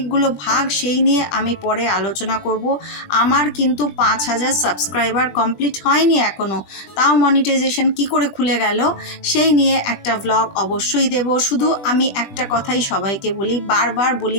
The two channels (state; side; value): late; right; 20 ms